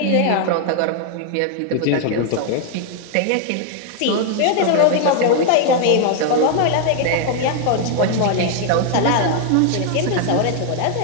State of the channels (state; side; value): different; both; correlation 0.00